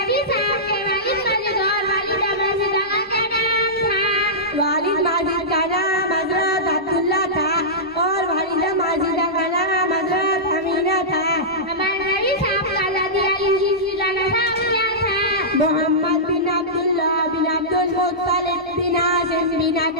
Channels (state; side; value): normal; both; correlation -0.15